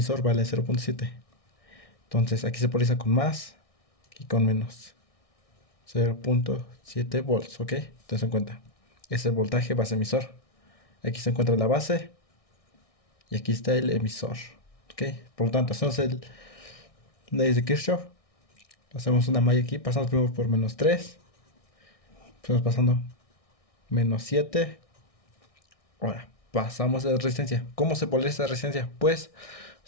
vale 0.7. Entonces aquí se polariza con más y con menos. 0.7 volts, ¿ok? Entonces en cuenta. Es el voltaje base emisor. Aquí se encuentra la base y aquí está el emisor, ¿ok? Por lo tanto, hacemos el ley de Kirchhoff. Hacemos una malla aquí, pasamos primero por -3. Estamos pasando -7. Ahora, pasamos a la resistencia. ¿Cómo se polariza la resistencia? Pues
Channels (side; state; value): right; late; 1.6 ms